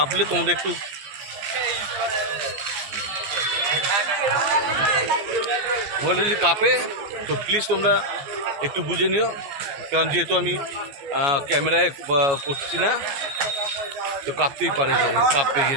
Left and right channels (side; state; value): left; late; 14 ms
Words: তোমাদের একটু মোবাইলটা যদি কাঁপে তো প্লিজ তোমরা একটু বুঝে নিও, কারণ যেহেতু আমি ক্যামেরায় করছি না তো কাঁপতেই পারে, যে কাঁপবে